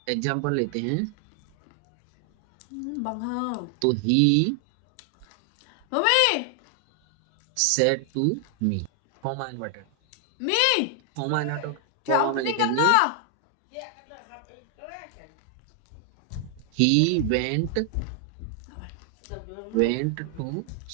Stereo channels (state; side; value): different; both; correlation 0.00